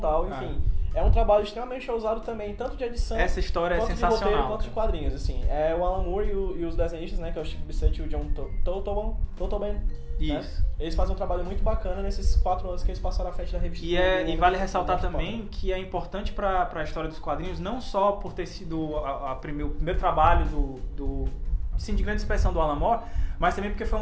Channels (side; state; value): both; identical; correlation 1.00